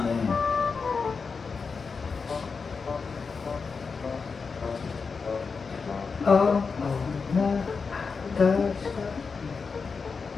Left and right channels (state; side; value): quieter; right; 5.1 dB